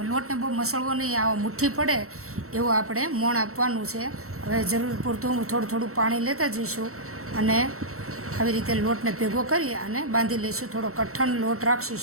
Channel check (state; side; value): late; left; 0.63 ms